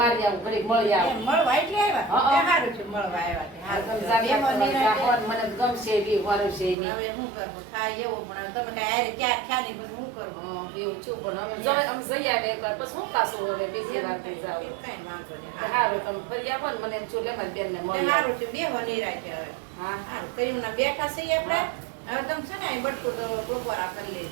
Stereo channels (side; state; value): left; drops out; at 6.8 s